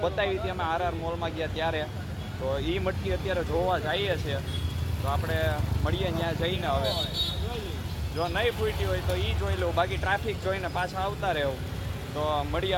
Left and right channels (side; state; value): both; identical; correlation 1.00